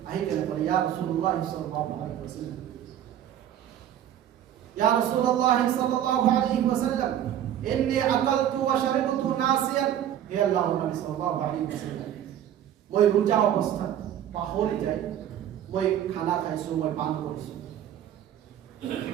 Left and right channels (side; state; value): left; quieter; 10.8 dB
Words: আহিকেন বলে, ইয়া রাসূলুল্লাহ সাল্লাল্লাহু আলাইহি ওয়াসাল্লাম, ইয়া রাসূলুল্লাহ সাল্লাল্লাহু আলাইহি ওয়াসাল্লাম, ইন্নী আকালতু ওয়া শারিবতু নাসিয়ান, হে আল্লাহর নবী সাল্লাল্লাহু আলাইহি ওয়াসাল্লাম, মই রোজা অবস্থা পাহৰি যায়, মই খানা খাইছো, মই পান কৰিছো,